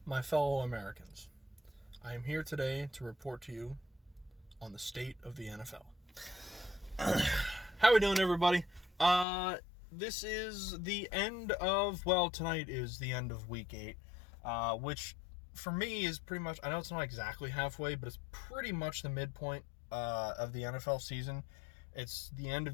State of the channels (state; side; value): drops out; right; at 9.2 s